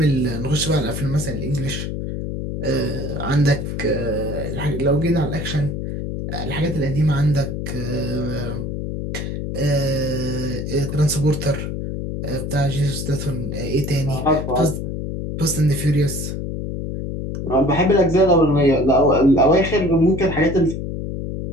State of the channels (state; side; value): noise; left; hum, 4 dB below the sound